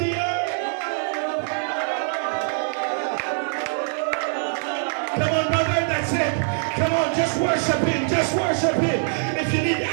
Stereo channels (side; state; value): left; silent; 63 dB below the other